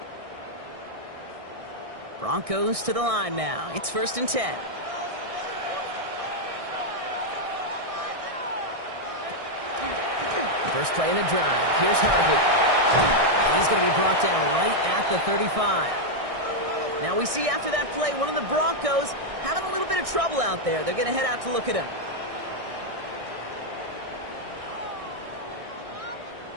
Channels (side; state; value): left; late; 1.6 ms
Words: Broncos to the line now. It's 1st and 10. First play in the drive. Here's Harvey. He's going to be brought down right at the 35. Now we see after that play, one of the Broncos having a little bit of trouble out there. They're going to head out to look at him.